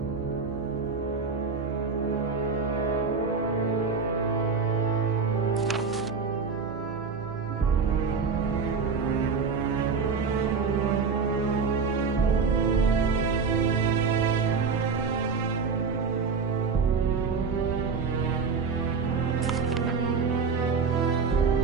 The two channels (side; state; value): left; quieter; 5.2 dB